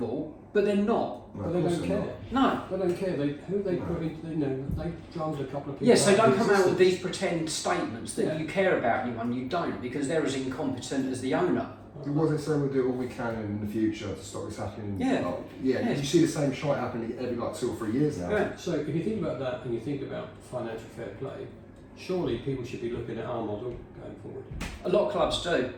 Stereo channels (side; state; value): both; identical; correlation 1.00